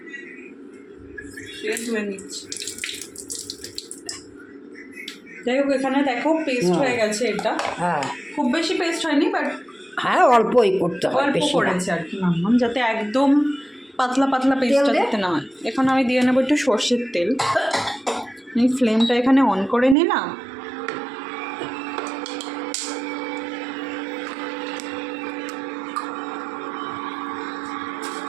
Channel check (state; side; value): drops out; left; at 20.0 s